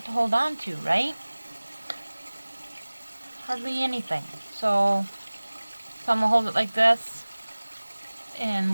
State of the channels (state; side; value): inverted; both; correlation -1.00